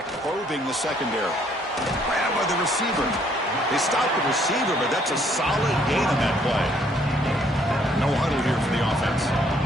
probing the secondary. Grab by the receiver. They stop the receiver, but that's a solid gain on that play. No huddle here for the offense.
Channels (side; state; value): both; normal; correlation 0.65